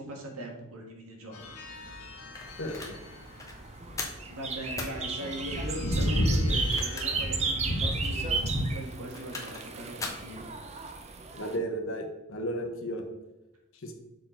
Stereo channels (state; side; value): normal; both; correlation 0.53